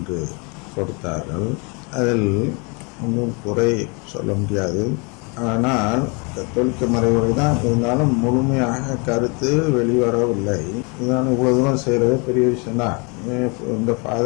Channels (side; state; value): right; quieter; 31.9 dB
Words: கொடுத்தார்கள். அதில் ஒன்றும் குறை சொல்ல முடியாது. ஆனால் கத்தோலிக்க மறைவுரை தான் இருந்தாலும் முழுமையாக கருத்து வெளிவரவில்லை. இதனால் இவ்வளவு தூரம் செய்யறது பெரிய விஷயம்தான். இந்த